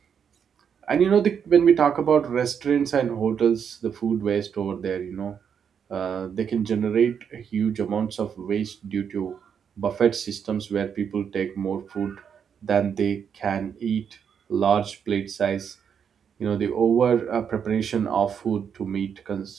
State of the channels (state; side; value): quieter; left; 7.5 dB